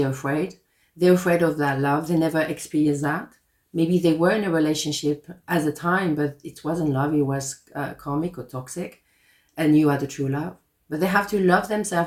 afraid. They're afraid of that love. They never experience that. Maybe they were in a relationship at the time, but it wasn't love. It was karmic or toxic, and you are the true love. But they have to love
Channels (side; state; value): both; identical; correlation 1.00